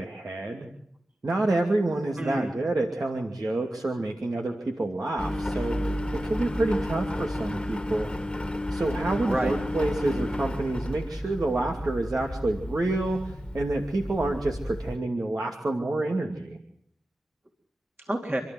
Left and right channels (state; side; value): normal; both; correlation 0.93